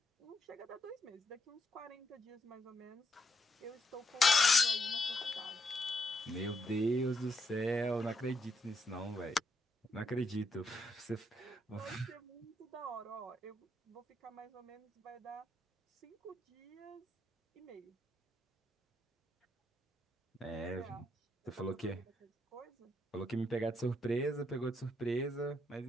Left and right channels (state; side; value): normal; both; correlation 0.78